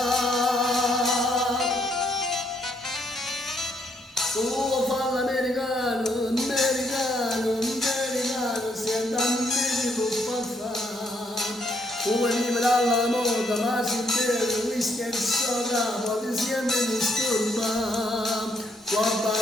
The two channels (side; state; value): both; normal; correlation 0.72